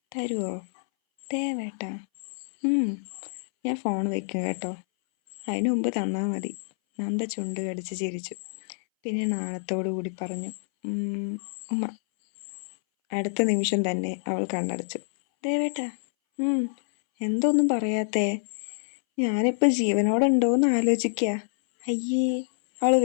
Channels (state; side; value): silent; right; 60 dB below the other